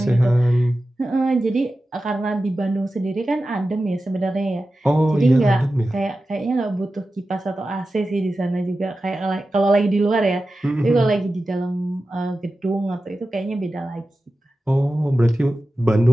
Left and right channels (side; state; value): both; normal; correlation 0.93